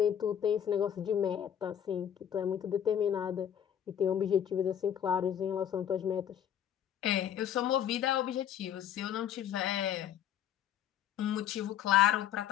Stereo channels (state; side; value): quieter; right; 9.8 dB